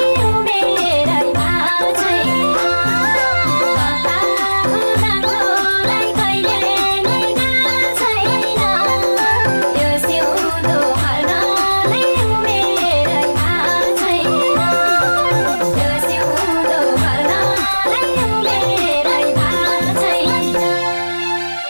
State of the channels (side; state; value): both; inverted; correlation -1.00